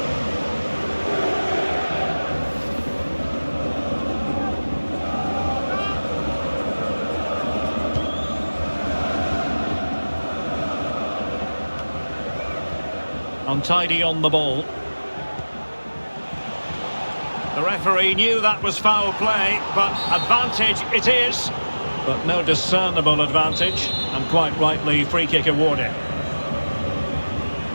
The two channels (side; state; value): both; inverted; correlation -1.00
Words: Untidy on the ball. The referee knew that was foul play, but advantage it is. But no discernible advantage, and quite rightly free kick awarded.